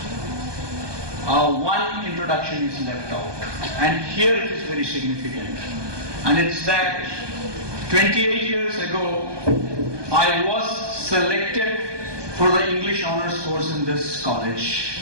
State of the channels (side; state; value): left; late; 1.2 ms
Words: one introduction is left out. And here it is very significant. And it's that 28 years ago, I was selected for the English Honours course in this